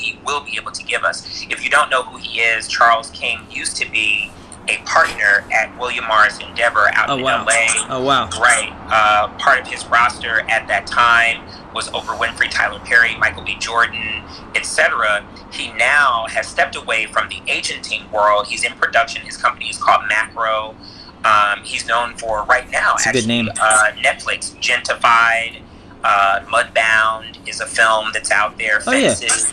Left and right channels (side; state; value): both; identical; correlation 1.00